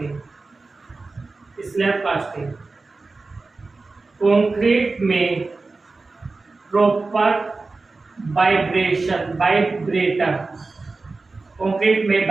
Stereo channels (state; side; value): quieter; left; 3.7 dB